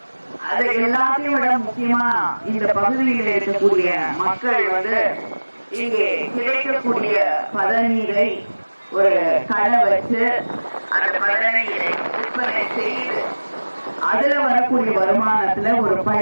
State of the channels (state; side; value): inverted; both; correlation -1.00